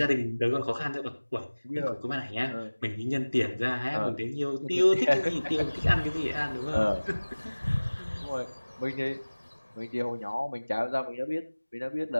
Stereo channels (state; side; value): inverted; both; correlation -1.00